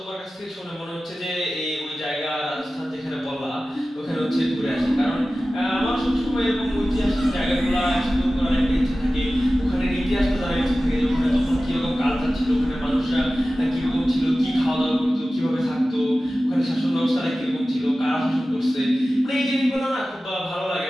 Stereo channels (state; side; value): normal; both; correlation 0.96